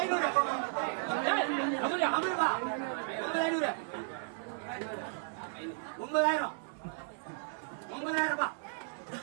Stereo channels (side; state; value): left; silent; digital silence